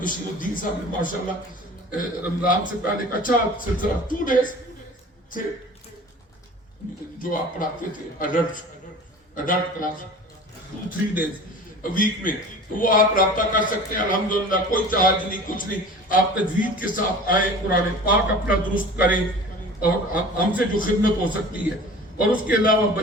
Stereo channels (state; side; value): normal; both; correlation 0.40